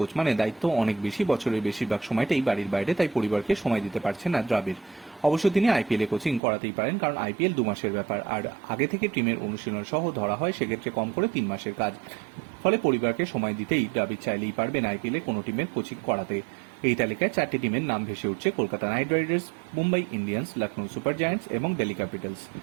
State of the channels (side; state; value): left; drops out; at 6.4 s